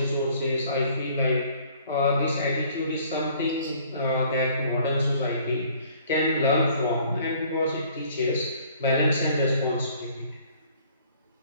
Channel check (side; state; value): both; inverted; correlation -0.57